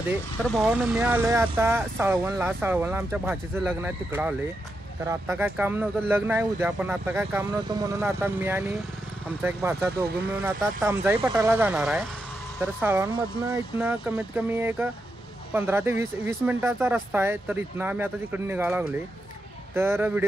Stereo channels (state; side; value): normal; both; correlation 0.85